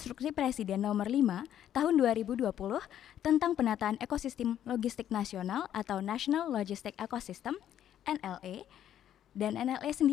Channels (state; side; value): quieter; right; 10.7 dB